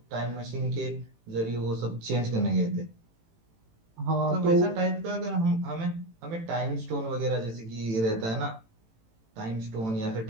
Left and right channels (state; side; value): late; left; 18 ms